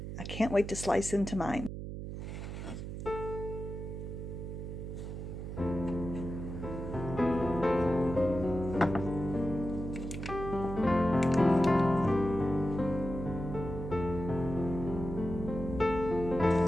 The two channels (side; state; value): right; noise; hum, 7 dB below the sound